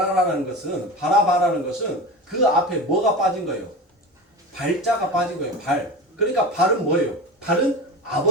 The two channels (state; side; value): normal; both; correlation 0.28